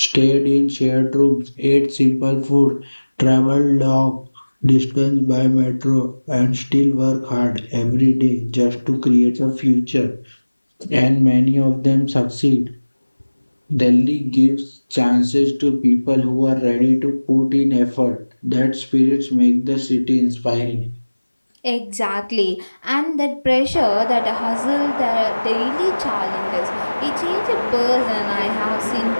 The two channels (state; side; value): inverted; both; correlation -1.00